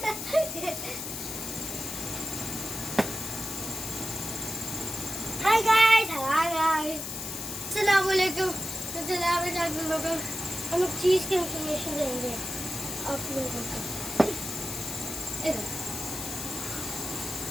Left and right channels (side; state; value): left; noise; hiss, 6 dB below the sound